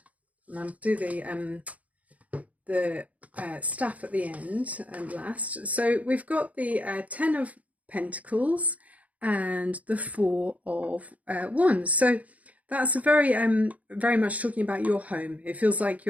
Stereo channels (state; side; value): late; left; 0.070 ms